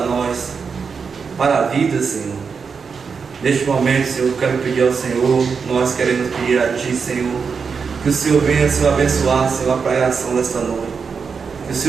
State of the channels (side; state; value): left; quieter; 5.7 dB